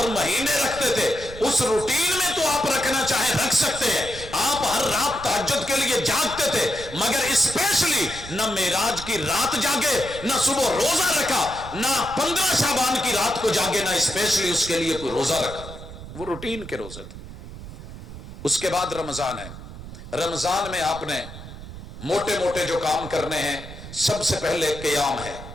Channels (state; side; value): noise; right; rumble, 13 dB below the sound